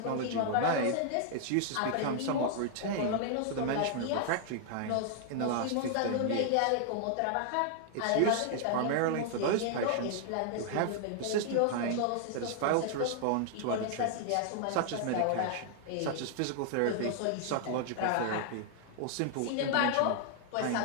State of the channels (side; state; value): both; different; correlation 0.00